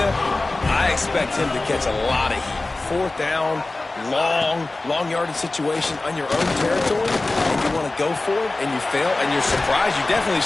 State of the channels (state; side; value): quieter; right; 3.1 dB